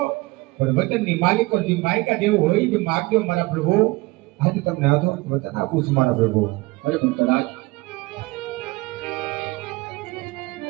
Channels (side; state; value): left; quieter; 22.2 dB